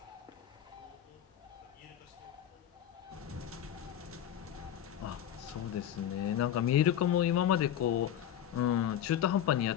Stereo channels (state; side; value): quieter; right; 10.6 dB